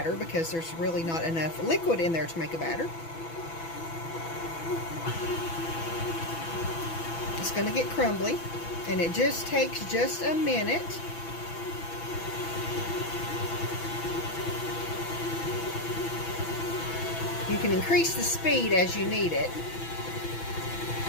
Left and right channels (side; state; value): right; late; 6.0 ms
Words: because there's really not enough liquid in there to make a batter. It's going to get crumbly, and it just takes just a minute. You can increase the speed as you need it.